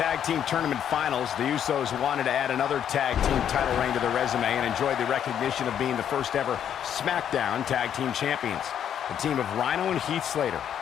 team tournament finals. The Usos wanted to add another tag team title reign to their resume and enjoyed the recognition of being the first ever SmackDown Tag Team Champions. The team of Rhino and Heath Slater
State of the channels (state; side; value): quieter; right; 9.3 dB